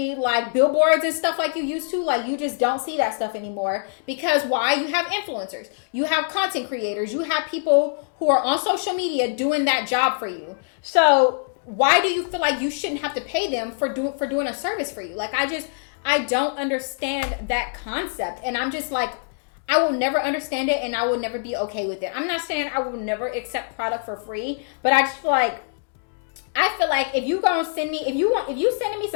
like billboards and stuff like you used to. Like, you just don't see that stuff anymore. Because why? You have influencers. You have content creators. You have people who are on social media doing that job for you. So why do you feel like you shouldn't have to pay them for doing a service for you? Like, I don't understand that concept. And I'm just like, I will never understand it and I will never be okay with it. I'm not saying I will never accept product for free, but I just feel like, if you gonna send me, if you sending me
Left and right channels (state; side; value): silent; right; digital silence